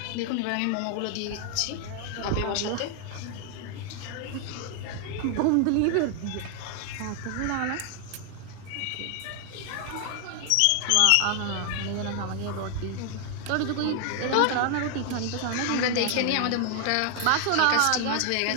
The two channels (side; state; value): both; different; correlation 0.00